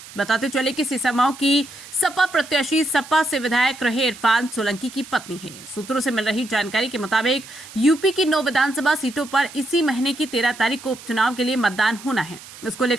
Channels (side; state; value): right; noise; hiss, 17 dB below the sound